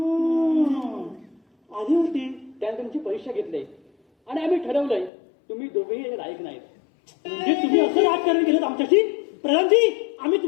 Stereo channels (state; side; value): drops out; right; at 5.1 s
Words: तुमची परीक्षा घेतली आणि आम्ही ठरवलंय तुम्ही दोघेही लायक नाहीत. म्हणजे तुम्ही असं राजकारण केलं आमच्याशी? प्रधानजी, आम्ही